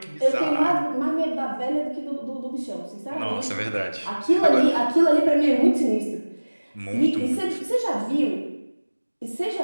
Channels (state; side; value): inverted; both; correlation -1.00